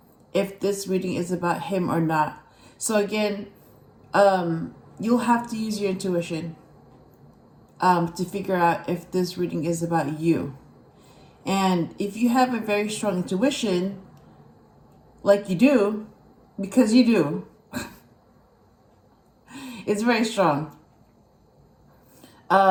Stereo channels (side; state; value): both; identical; correlation 1.00